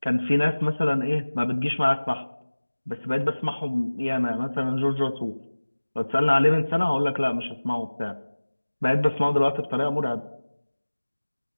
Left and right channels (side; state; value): both; inverted; correlation -1.00